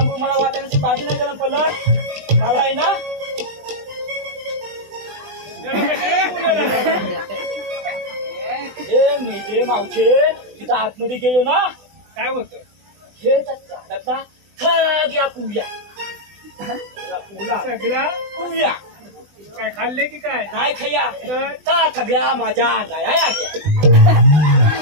मला वाटाण्याची भाजी नाही गरम पडलं. मला आहे ना जरा कशाला बोलायला लागला? हे मी ते मावशे तिथं आतमध्ये गेलो ना काय होतं? हे झाडाचा सगळ्या कुव्या सगळ्या कुव्या काय खाल्ले की काय? नाही खయ్या तर त्या सगळ्या माझ्या अंगाया आल्या.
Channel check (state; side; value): late; left; 20 ms